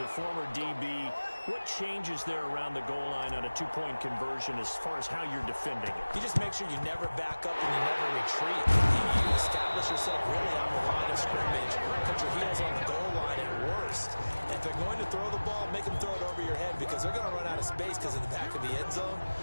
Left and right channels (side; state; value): both; inverted; correlation -1.00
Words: former DB, what changes there around the goal line on a 2-point conversion as far as how you're defending it? You just make sure you never back up and you never retreat. You establish yourself really on the line of scrimmage, put your heels on the goal line at worst. And if they're going to throw the ball, make them throw it over your head, because they're going to run out of space because in the back of the end zone.